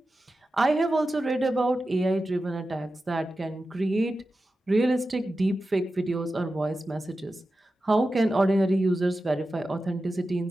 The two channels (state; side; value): normal; both; correlation 0.93